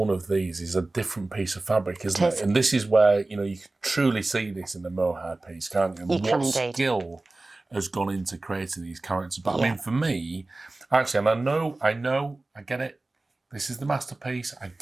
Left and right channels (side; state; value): left; quieter; 3.0 dB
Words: of these is a different piece of fabric, isn't It is. it? And this is where, you can truly see this in the mohair piece, can't you? You can indeed. Skill has gone into creating these characters. But I Yeah. mean, for me, actually, and I get it. This is the masterpiece. I